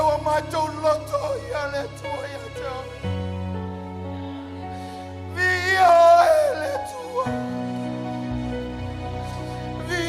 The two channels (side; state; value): both; identical; correlation 1.00